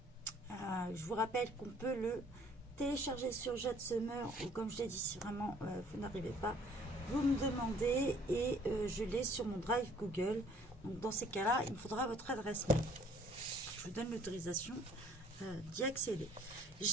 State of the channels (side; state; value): both; normal; correlation 0.57